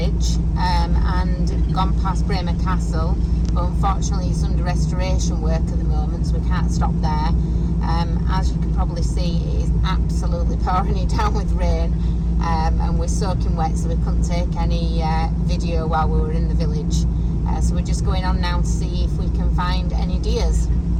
and gone past Braemar Castle, but unfortunately it's under restoration work at the moment, so we can't stop there. As you can probably see, it is absolutely pouring it down with rain, and we're soaking wet, so we couldn't take any video while we were in the village. So we're just going on now to see if we can find any deers.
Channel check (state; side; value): identical; both; correlation 1.00